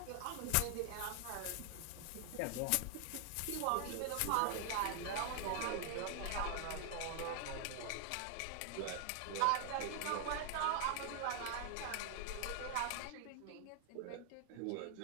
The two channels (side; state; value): both; different; correlation 0.00